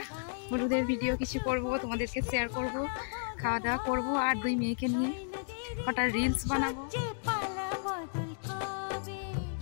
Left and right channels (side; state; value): right; silent; digital silence